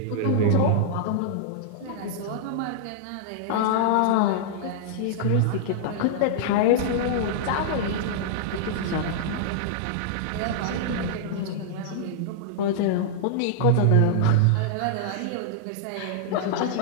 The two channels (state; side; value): different; both; correlation -0.01